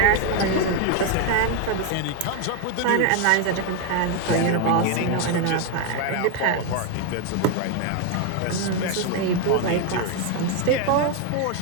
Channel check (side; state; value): both; different; correlation 0.01